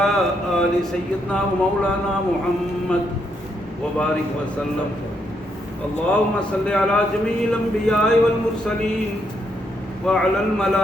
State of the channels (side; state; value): both; normal; correlation 0.77